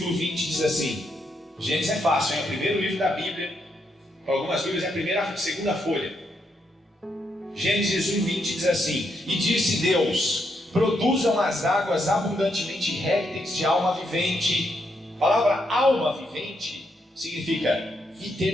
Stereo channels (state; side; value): normal; both; correlation 0.78